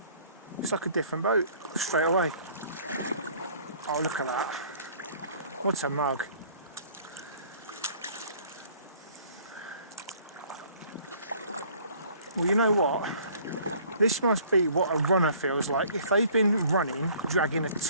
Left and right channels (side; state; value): both; inverted; correlation -0.55